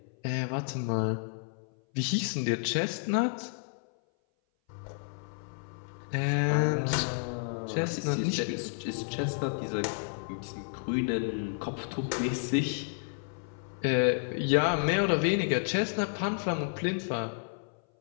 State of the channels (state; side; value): silent; right; 57 dB below the other